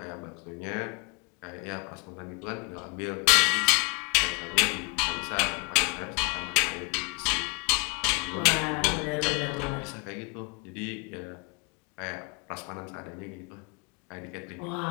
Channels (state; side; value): quieter; right; 32.4 dB